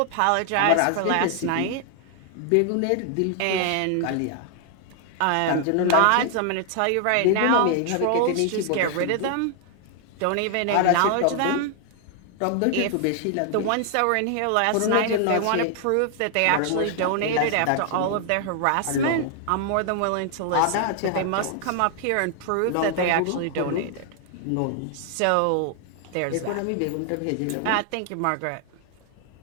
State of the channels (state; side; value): different; both; correlation 0.00